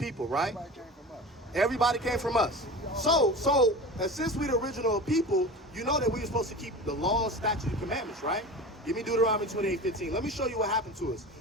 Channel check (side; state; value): both; normal; correlation 0.33